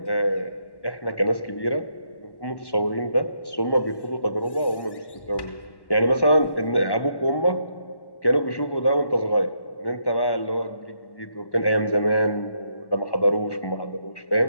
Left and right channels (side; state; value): right; late; 1.1 ms